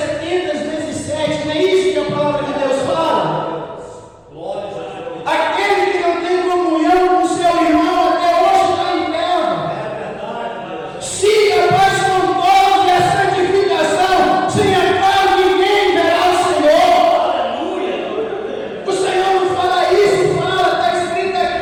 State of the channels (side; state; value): both; identical; correlation 1.00